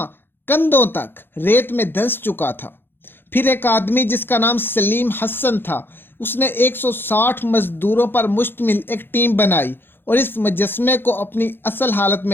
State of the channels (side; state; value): right; late; 0.10 ms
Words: کندھوں تک ریت میں دھنس چکا تھا۔ پھر ایک آدمی جس کا نام سلیم حسن تھا، اس نے 160 مزدوروں پر مشتمل ایک ٹیم بنائی اور اس مجسمے کو اپنی اصل حالت